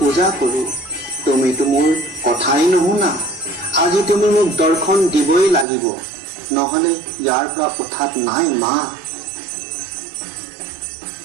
কৰোঁ। তুমিতো মোৰ কথাই নুশুনা। আজি তুমি মোক দৰ্শন দিবই লাগিব, নহলে ইয়াৰ পৰা উঠাত নাই মা।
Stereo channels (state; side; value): drops out; left; at 5.7 s